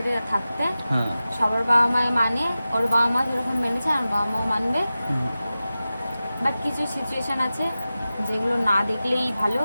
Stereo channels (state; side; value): inverted; both; correlation -0.95